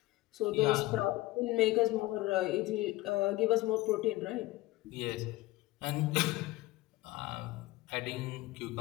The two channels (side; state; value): right; quieter; 18.7 dB